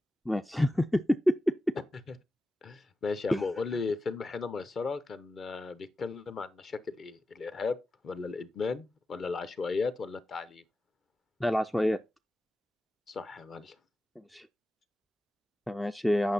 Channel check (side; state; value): both; normal; correlation 0.93